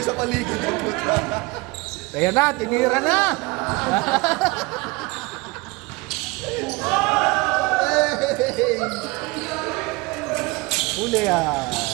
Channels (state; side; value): quieter; left; 24.6 dB